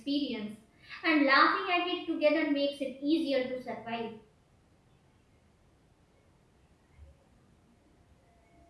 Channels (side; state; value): both; identical; correlation 1.00